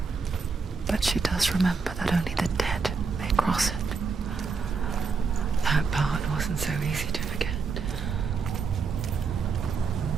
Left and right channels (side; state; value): left; quieter; 4.9 dB